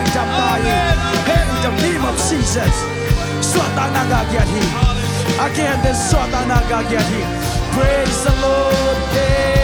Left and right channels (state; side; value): identical; both; correlation 1.00